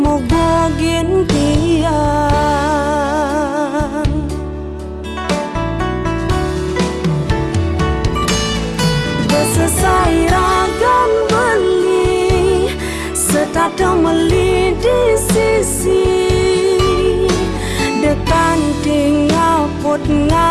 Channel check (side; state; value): both; identical; correlation 1.00